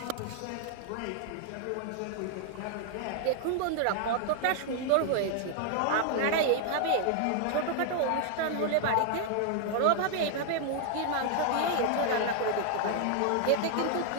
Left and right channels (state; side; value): different; both; correlation 0.00